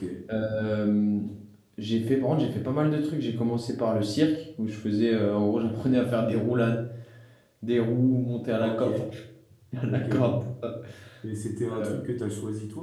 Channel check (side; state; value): both; identical; correlation 1.00